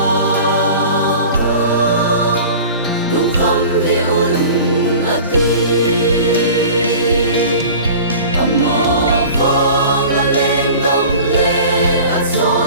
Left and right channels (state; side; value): inverted; both; correlation -0.40